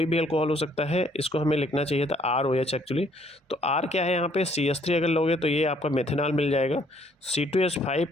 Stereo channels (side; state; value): both; normal; correlation 0.64